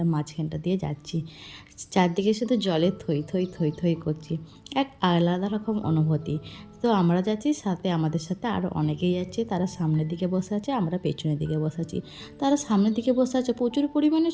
মাঝখানটা দিয়ে যাচ্ছি। চারদিকে শুধু জলে থই থই থই থই করছি, এক আলাদা রকম অনুভূতি। তো আমরা যাচ্ছি, সাথে আমাদের সাথে আরও অনেকেই যাচ্ছে। তারা সামনের দিকে বসে আছে, আমরা পেছনের দিকে বসে আছি। তারা সামনের দিকে বসে আছে, প্রচুর পরিমাণে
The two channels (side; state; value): both; identical; correlation 1.00